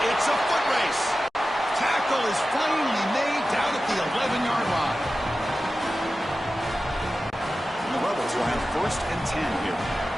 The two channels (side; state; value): both; normal; correlation 0.94